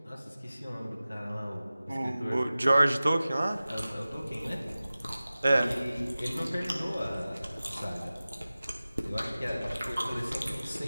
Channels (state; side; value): inverted; both; correlation -0.97